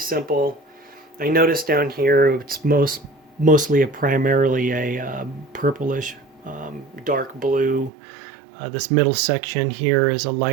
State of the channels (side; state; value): left; drops out; at 7.9 s